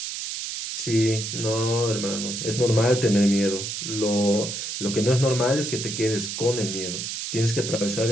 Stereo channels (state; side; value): noise; right; hiss, 5 dB below the sound